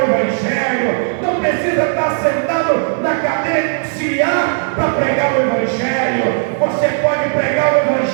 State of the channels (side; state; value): left; silent; 56 dB below the other